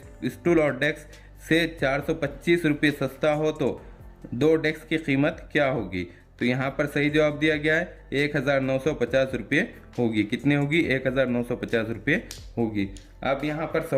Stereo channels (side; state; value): both; identical; correlation 1.00